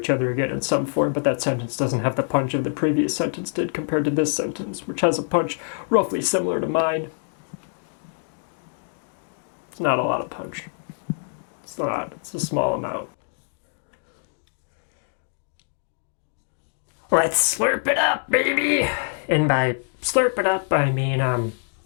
other again in some form, but that sentence doesn't have the punch of the previous sentence did compared to this sentence, which has a punch roughly similar to mine. It's not a lot of punch. It's not. It's a small amount. Let's slurp it up, baby! And by slurp it up, I mean,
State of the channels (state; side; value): silent; right; digital silence